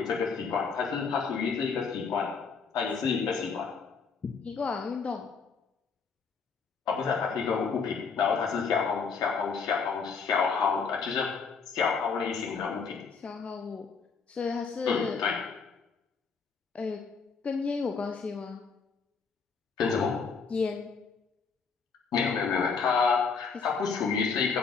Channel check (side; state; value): right; quieter; 5.4 dB